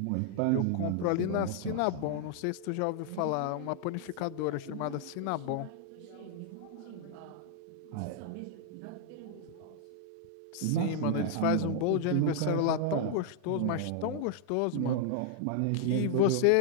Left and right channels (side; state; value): both; different; correlation 0.00